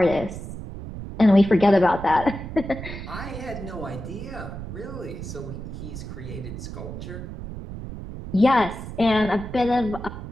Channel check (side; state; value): right; noise; rumble, 9 dB below the sound